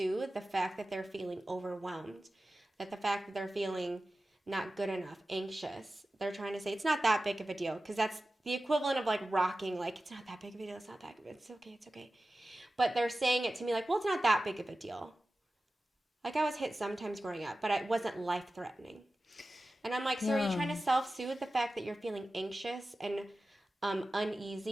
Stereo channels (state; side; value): normal; both; correlation 0.95